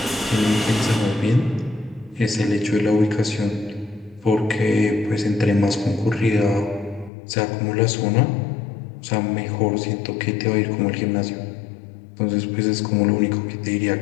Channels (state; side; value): drops out; right; at 7.1 s